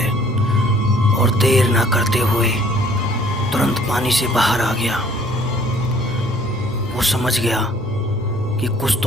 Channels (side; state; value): both; normal; correlation 0.57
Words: और देर ना करते हुए तुरंत पानी से बाहर आ गया। वो समझ गया कि कुछ